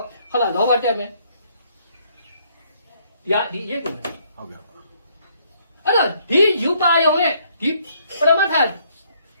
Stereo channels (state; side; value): inverted; both; correlation -0.67